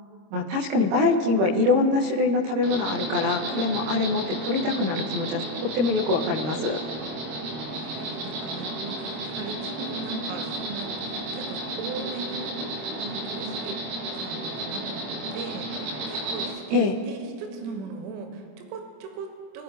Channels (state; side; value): late; left; 26 ms